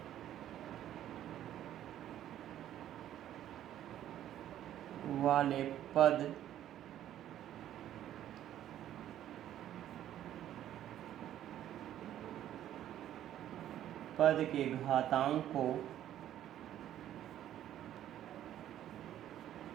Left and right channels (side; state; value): left; quieter; 11.7 dB